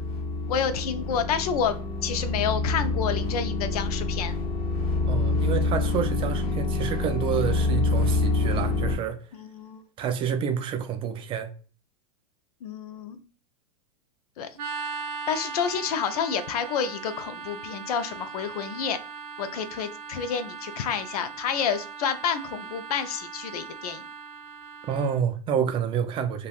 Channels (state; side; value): normal; both; correlation 0.23